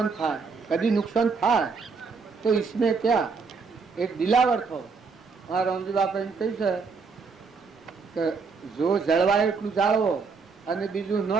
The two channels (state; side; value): quieter; left; 4.9 dB